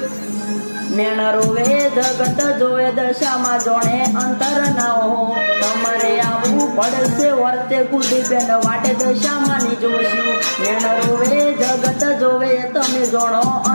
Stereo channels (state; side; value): inverted; both; correlation -1.00